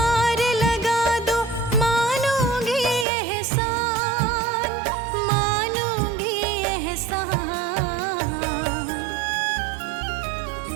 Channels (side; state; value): left; drops out; at 3.1 s